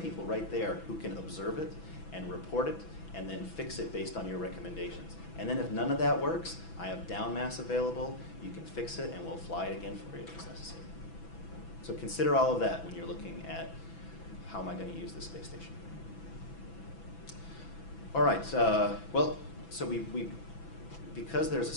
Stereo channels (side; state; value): right; late; 6.0 ms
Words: people right there who can observe it and report it and then fix it based on your recommendations. And then if none of that works, I have down mass available. You can fix it and we'll fly it again for you if it's necessary. So consider all of that when you're looking at how am I going to use this space station. All right, well, so because there's a